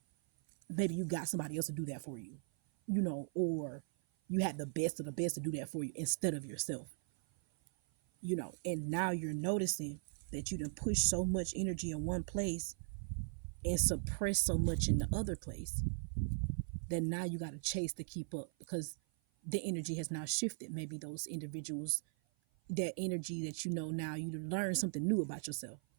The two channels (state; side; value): silent; left; 52 dB below the other